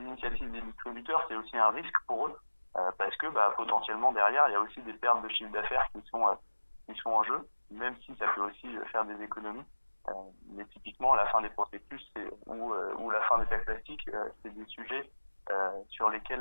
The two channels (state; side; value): inverted; both; correlation -1.00